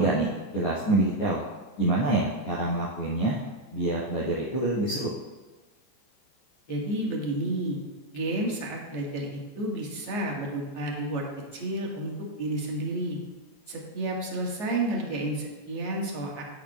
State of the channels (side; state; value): right; late; 14 ms